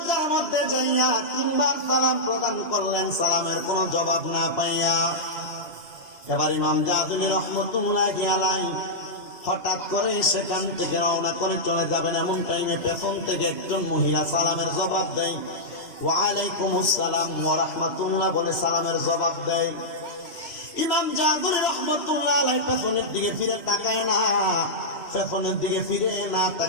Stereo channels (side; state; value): right; late; 2.9 ms